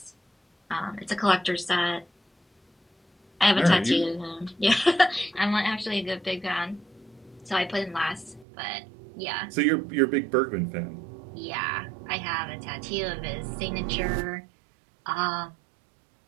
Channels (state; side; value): drops out; left; at 8.5 s